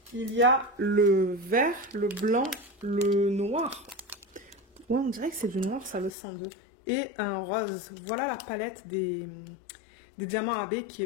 Il y a le vert, le blanc, le noir. Ouais, on dirait que c'est du noir, ça, le 102. Et un rose. Voilà la palette des diamants AB qui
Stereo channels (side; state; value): right; drops out; at 6.1 s